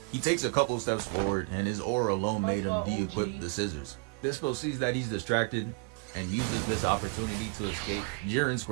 He takes a couple steps forward, and his aura alone made him de-equip the scissors. Dispo sees that he's distracted and uses this opportunity to escape. Jiren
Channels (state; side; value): quieter; left; 30.9 dB